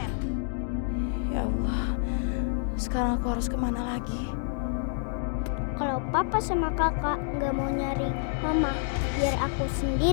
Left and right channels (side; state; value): right; silent; digital silence